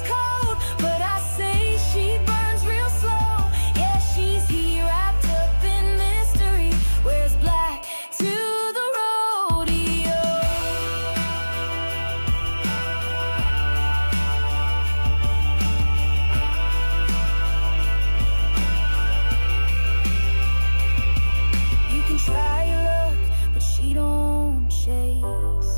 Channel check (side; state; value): both; inverted; correlation -1.00